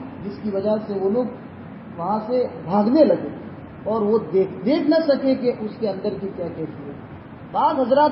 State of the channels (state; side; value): identical; both; correlation 1.00